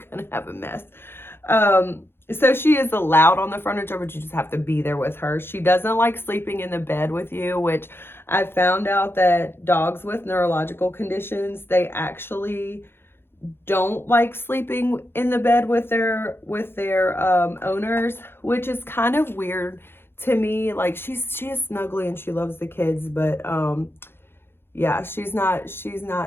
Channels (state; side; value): late; right; 0.11 ms